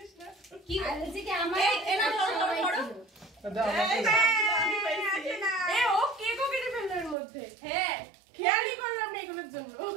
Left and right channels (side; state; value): left; drops out; at 7.2 s